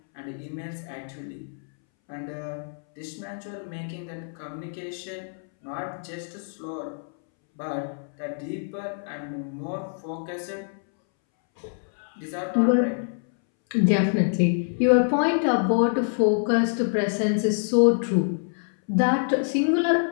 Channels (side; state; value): right; silent; 61 dB below the other